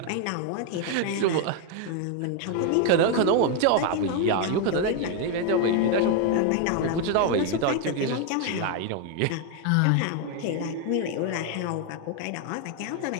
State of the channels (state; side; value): different; both; correlation 0.01